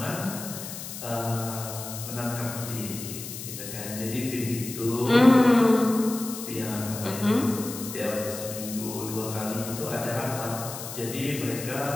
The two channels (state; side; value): noise; left; hiss, 9 dB below the sound